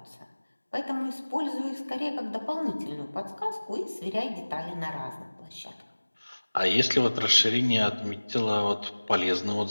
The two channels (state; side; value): inverted; both; correlation -1.00